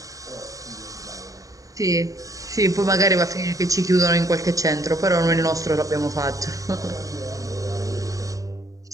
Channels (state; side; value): late; left; 0.16 ms